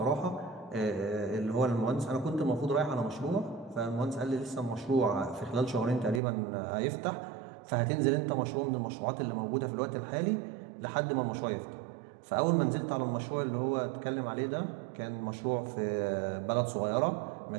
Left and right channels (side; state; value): left; drops out; at 6.2 s